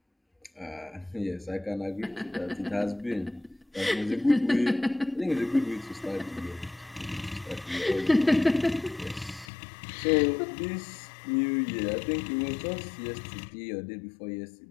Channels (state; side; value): drops out; right; at 9.5 s